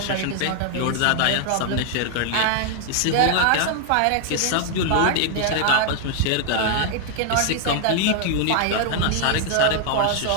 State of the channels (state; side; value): different; both; correlation 0.00